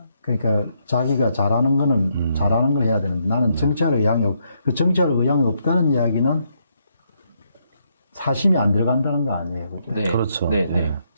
그러니까 자기가 잘하는 거는 잘하는 걸 해야 되는데 나는 정치할 의향이 그 정치할 의향이 없다는 이야기는 사심이 안 들어간다는 거 아니에요. 그죠? 네. 그렇죠. 네, 네. 예.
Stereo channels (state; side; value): inverted; both; correlation -0.76